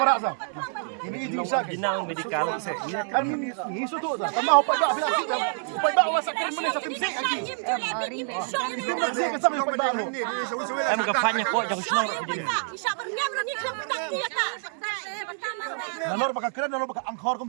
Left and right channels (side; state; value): left; silent; 60 dB below the other